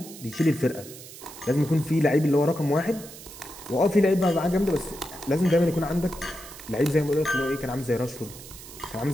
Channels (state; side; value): noise; right; hiss, 16 dB below the sound